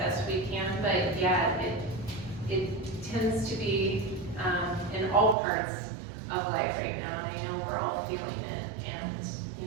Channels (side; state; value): left; drops out; at 5.4 s